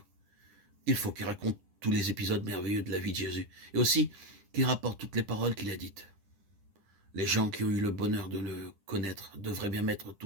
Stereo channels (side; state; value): left; late; 9.9 ms